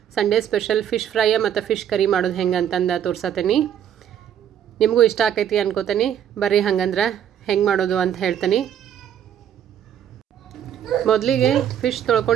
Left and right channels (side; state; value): left; quieter; 9.6 dB